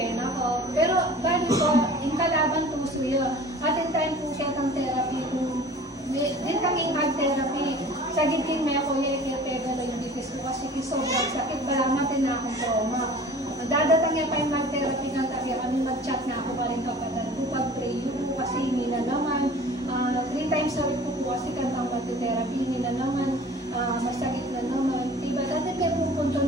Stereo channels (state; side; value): normal; both; correlation 0.44